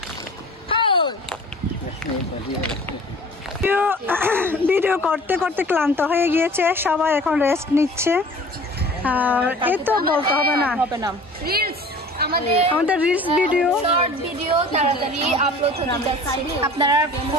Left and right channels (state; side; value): normal; both; correlation 0.45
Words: ভিডিও করতে করতে ক্লান্ত হয়ে গিয়েছে, সবাই এখন রেস্ট নিচ্ছে। আর এই তো বলতে হবে না, আমাদের রিলস ভিডিও, শর্ট ভিডিও তাড়াতাড়ি আপলোড হতে যাচ্ছে। আপনারা